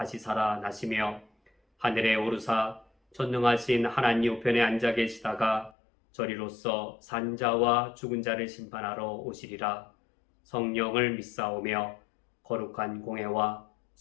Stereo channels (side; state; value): right; drops out; at 5.7 s